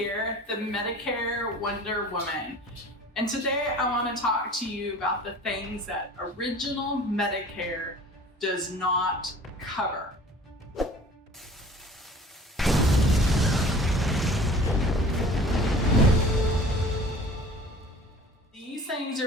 the Medicare Wonder Woman. And today I want to talk to you about the things that original Medicare does not cover. These things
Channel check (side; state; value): both; normal; correlation 0.45